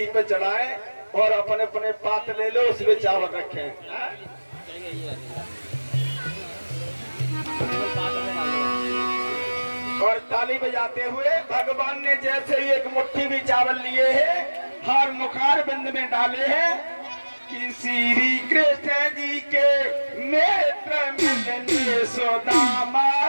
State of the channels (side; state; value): both; inverted; correlation -1.00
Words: पे चढ़ाए और अपने अपने पात्र ले लो उसमें चावल रखें। और ताली बजाते हुए भगवान ने जैसे ही एक मुट्ठी भी चावल लिए हैं हर मुखार बिंद में डाले हैं कि श्री कृष्ण जी के नेत्र मिलने सुदामा